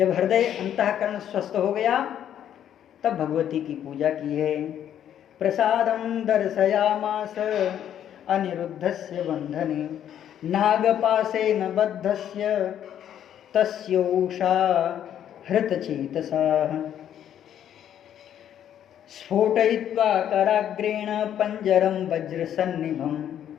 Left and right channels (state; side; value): quieter; right; 10.2 dB